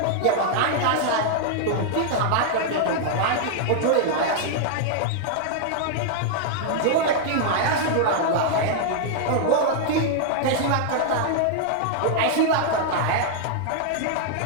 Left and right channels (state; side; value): different; both; correlation -0.01